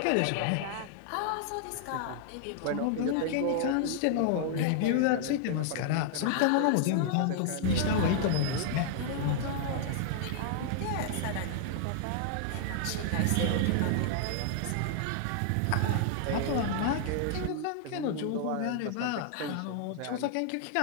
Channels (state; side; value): different; both; correlation 0.00